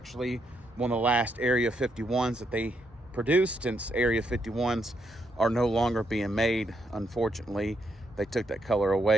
one of the last Area 51s that they produced, since Area 51s are no longer being made, unfortunately. They took that color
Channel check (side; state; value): both; normal; correlation 0.77